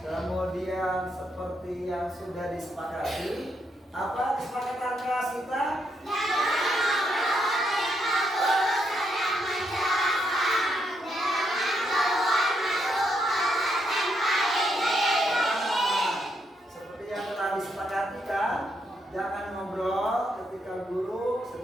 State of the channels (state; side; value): normal; both; correlation 0.78